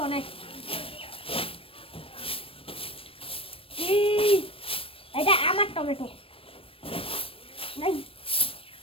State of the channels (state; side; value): late; right; 0.27 ms